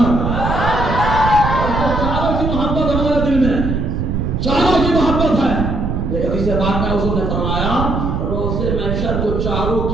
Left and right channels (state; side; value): noise; right; rumble, 1 dB below the sound